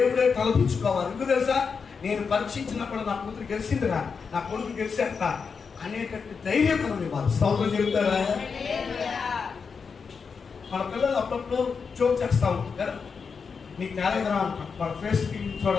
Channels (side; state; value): right; quieter; 5.6 dB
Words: తలపించుకోవాలి. ఎందుకు తెలుసా? నేను పరీక్షించినప్పుడు నా కూతురు గెలిచిందిరా, నా కొడుకు గెలిచాక అనేటట్టు ధైర్యం మనం ఇవ్వాలి. స్తోత్రం చెబుతారా? మన పిల్లలు అప్పుడప్పుడు జోక్ చేస్తా ఉంటారు కదా, నీకు తేలేదురా అంటాం. వాళ్ళ ఫేస్కి